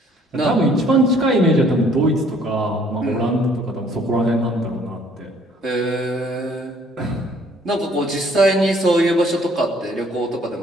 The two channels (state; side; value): normal; both; correlation 0.60